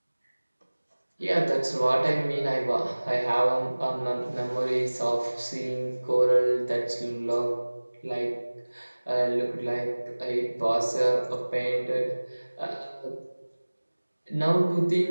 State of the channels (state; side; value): inverted; both; correlation -1.00